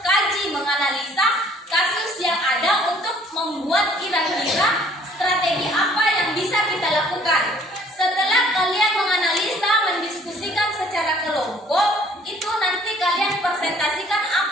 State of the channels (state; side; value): normal; both; correlation 0.57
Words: menganalisa kasus yang ada untuk membuat kira-kira strategi apa yang bisa kita lakukan. Setelah kalian menganalisa, mendiskusikan secara kelompok, itu nanti kalian presentasikan